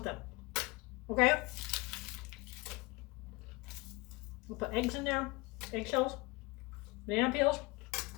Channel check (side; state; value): right; quieter; 24.2 dB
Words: them. Okay? We'll put eggs in there, eggshells, banana peels,